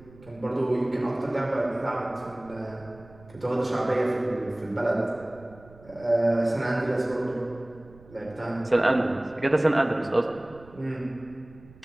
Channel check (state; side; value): noise; right; rumble, 23 dB below the sound